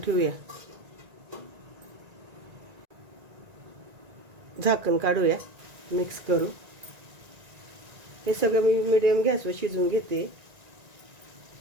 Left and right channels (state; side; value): late; left; 1.9 ms